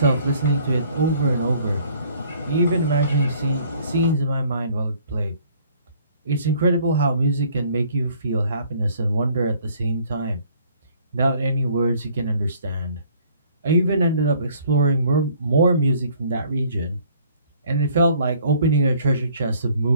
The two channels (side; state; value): both; inverted; correlation -0.59